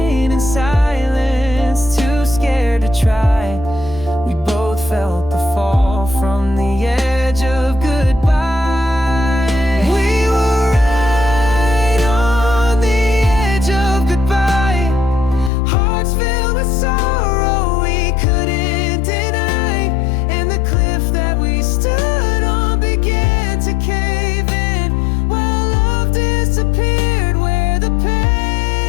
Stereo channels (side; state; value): right; drops out; at 15.5 s